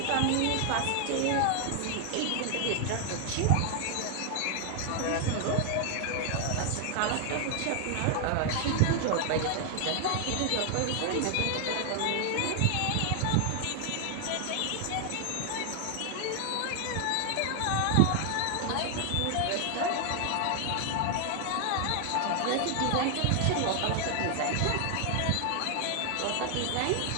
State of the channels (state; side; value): different; both; correlation 0.00